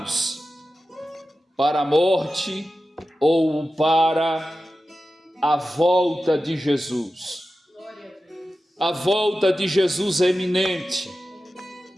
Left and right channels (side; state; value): both; normal; correlation 0.93